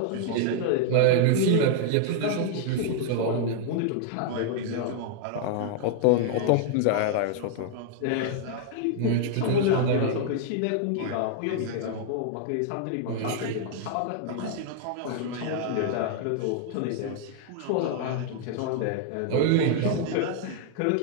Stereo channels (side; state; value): both; different; correlation 0.00